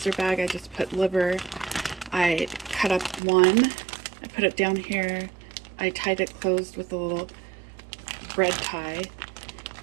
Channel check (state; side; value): drops out; left; at 3.2 s